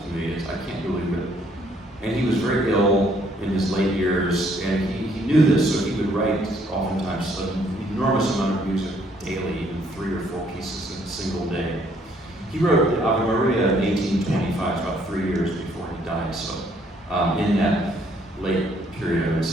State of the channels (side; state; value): both; normal; correlation 0.66